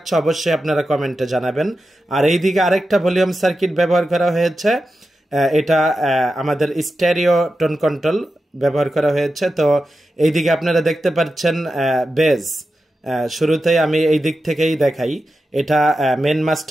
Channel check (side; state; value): both; normal; correlation 0.91